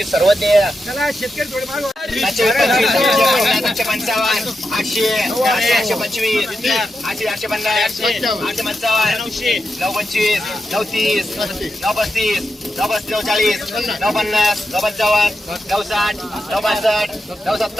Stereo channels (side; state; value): both; normal; correlation 0.87